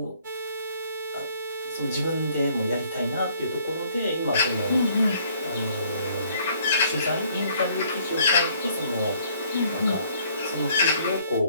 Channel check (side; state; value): both; inverted; correlation -0.63